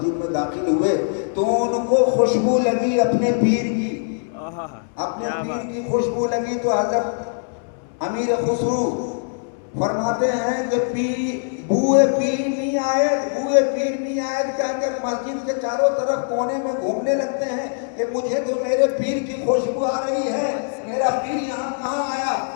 میں داخل ہوئے تو ان کو خوشبو لگی اپنے پیر کی، اپنے پیر کی خوشبو لگی. تو حضرت امیر خسرو فرماتے ہیں کہ بوئے پیر نہیں آئے، بوئے پیر نہیں آئے کہہ کر مسجد کے چاروں طرف کونے میں گھومنے لگتے ہیں کہ مجھے تو میرے پیر کی خوشبو آ رہی ہے. میرا پیر یہاں کہاں آیا؟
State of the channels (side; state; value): right; silent; 64 dB below the other